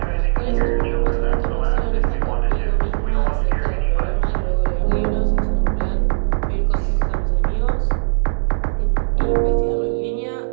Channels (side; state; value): left; silent; digital silence